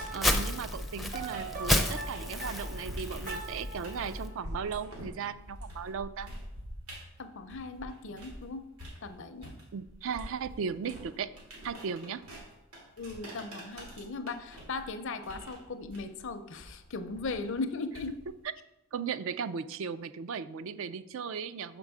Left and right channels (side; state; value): both; normal; correlation 0.29